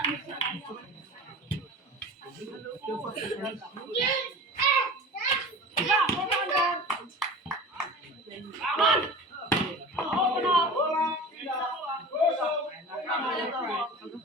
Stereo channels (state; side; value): normal; both; correlation 0.36